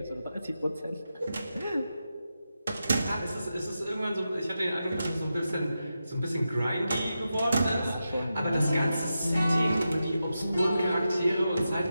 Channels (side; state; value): both; inverted; correlation -0.89